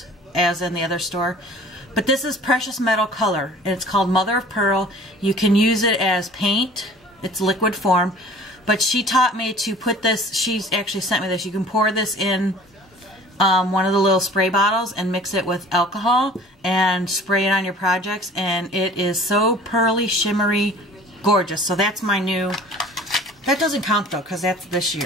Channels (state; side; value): normal; both; correlation 0.46